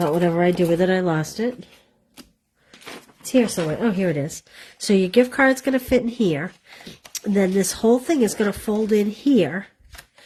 whatever I do with it, I lost it. It's here somewhere. Oh, here it is. So your gift card's going to fit in here. And then this whole thing is going to fold in here.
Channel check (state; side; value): identical; both; correlation 1.00